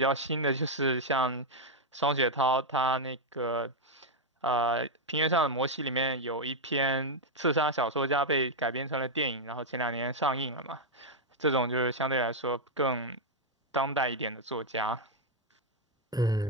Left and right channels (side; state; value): both; normal; correlation 0.00